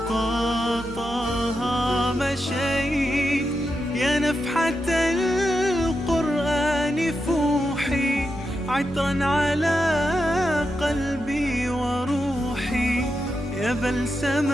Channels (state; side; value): normal; both; correlation 0.87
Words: طه مشيت. يا نفحة القرآن فوحي، عطرا على قلبي وروحي، يا